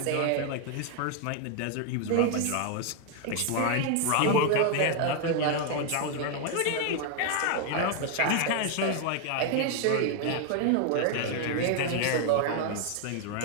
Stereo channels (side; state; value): both; different; correlation 0.00